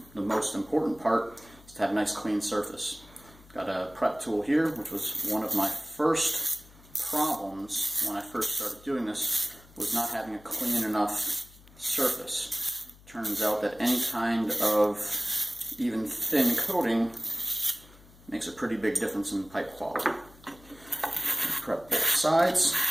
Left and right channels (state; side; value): noise; left; hum, 24 dB below the sound